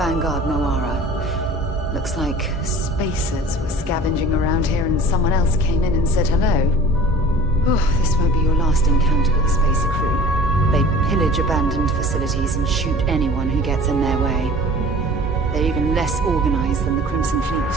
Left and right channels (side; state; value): both; normal; correlation 0.43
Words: Vanguard Moara. Looks like spacers were scavenging around here and someone else came in and said hello. Oh, this won't be your last encounter with a spacer crew. They pillage abandoned facilities and shoot anyone who gets in their way. They're even less organized than the Crimson Fleet.